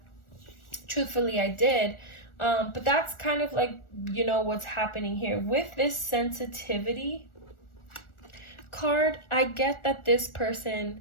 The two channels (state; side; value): late; right; 1.4 ms